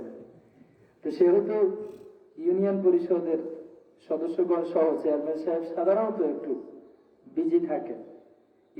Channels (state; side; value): identical; both; correlation 1.00